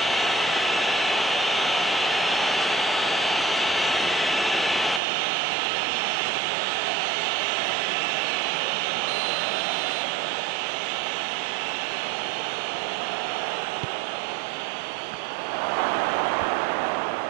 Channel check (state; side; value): drops out; left; at 5.0 s